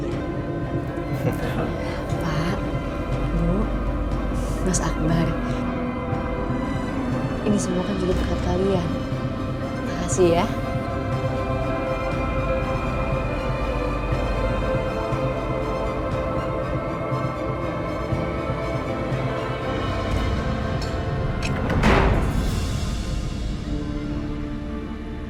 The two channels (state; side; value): identical; both; correlation 1.00